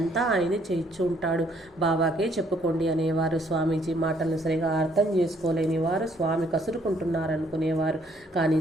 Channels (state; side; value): normal; both; correlation 0.66